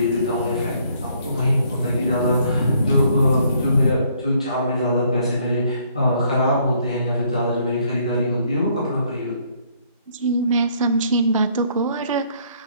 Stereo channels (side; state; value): both; inverted; correlation -0.66